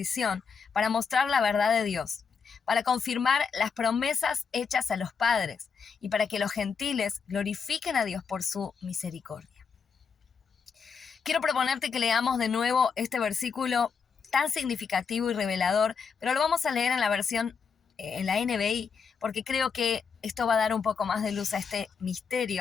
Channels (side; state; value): right; quieter; 5.9 dB